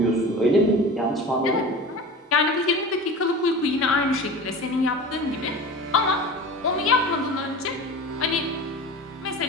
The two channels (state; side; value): normal; both; correlation 0.34